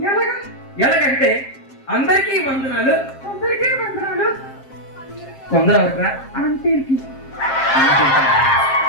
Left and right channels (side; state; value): right; late; 7.5 ms